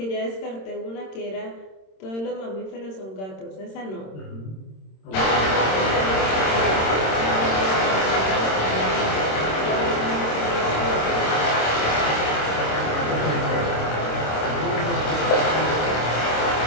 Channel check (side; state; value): right; late; 26 ms